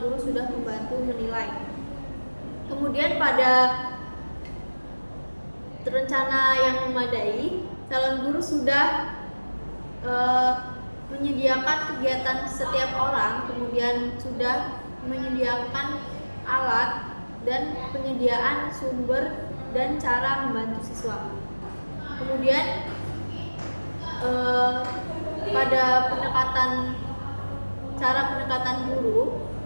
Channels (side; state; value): both; inverted; correlation -1.00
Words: guru sudah membantu menilai. Kemudian pada rencana yang memadai, calon guru sudah menyediakan kegiatan setiap orang, kemudian sudah menyediakan alat dan penyediaan sumber dan cara membantu siswa. Kemudian pada cara pendekatan guru,